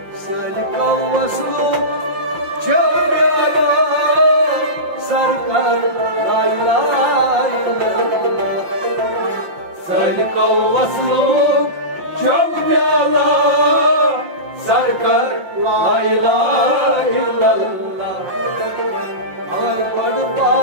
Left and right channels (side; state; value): left; late; 5.7 ms